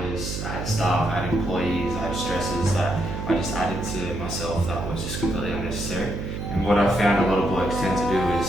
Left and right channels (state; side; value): noise; right; hum, 5 dB below the sound